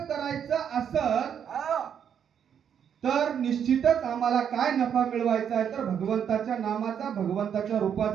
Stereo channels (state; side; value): quieter; left; 8.3 dB